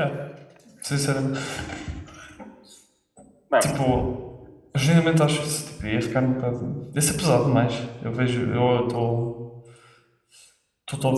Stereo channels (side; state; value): both; identical; correlation 1.00